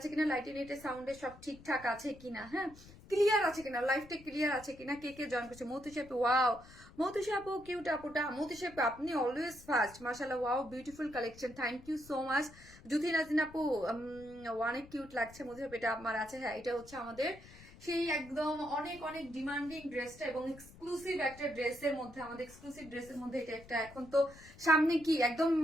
কিনা, লাইটে নেটে সাউন্ডে সব ঠিকঠাক আছে কিনা, হ্যাঁ, ক্লিয়ার আছে কিনা, লাইফটা ক্লিয়ার আছে কিনা। কে কে জয়েন করছে? মৌতুষি আপু, ওয়াও মৌতুষি আপু, কিউট আপুটা। মৌতুষি আপু আপনি অলওয়েজ ফার্স্ট, মাশাআল্লাহ, wow beautiful collection, thank you so much. Juthi Najin আপু, অনেক কিউট লাগছে। মধু এটা আমার আছে, হ্যাঁ, এটা হচ্ছে আমাদের সেই একদম অনেক অনেক ডিমান্ডিং ড্রেসটা এবং এক্সক্লুসিভ একটা ড্রেসের মধ্যে, আমাদের এক্সক্লুসিভ ড্রেসের মধ্যে এটা একটা। এখন তো সামনে কি একদম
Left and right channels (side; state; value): left; noise; rumble, 20 dB below the sound